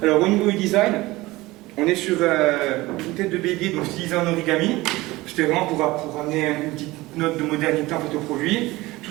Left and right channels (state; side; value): quieter; left; 19.7 dB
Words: Alors au niveau du design, on est sur une tête de bélier donc stylisée en origami. C'était vraiment pour amener une petite note de modernité en fait au produit,